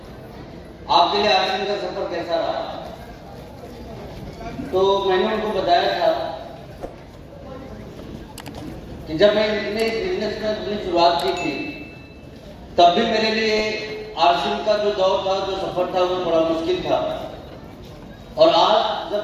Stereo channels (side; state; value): both; identical; correlation 1.00